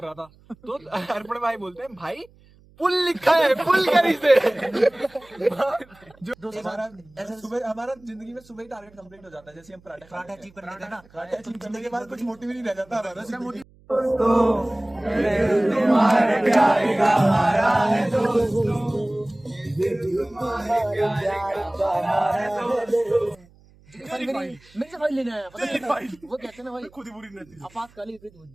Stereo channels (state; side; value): noise; right; hum, 28 dB below the sound